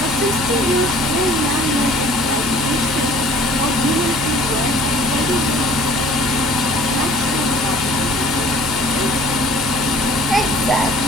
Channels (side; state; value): both; normal; correlation 0.51